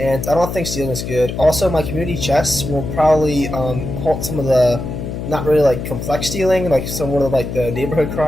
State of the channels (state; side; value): noise; left; hum, 6 dB below the sound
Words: I don't think stealing is good. Also, my community chests will probably halt some of the not really complex stealing, some of the neighborhood